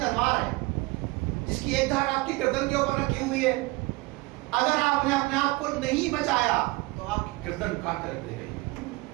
ہے جس کی ایک دھار آپ کی گردن کے اوپر رکھی ہوئی ہے. اگر آپ نے اپنے آپ کو نہیں بچایا تو آپ کی گردن کاٹ کر رکھ دے گی،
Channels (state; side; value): quieter; left; 22.7 dB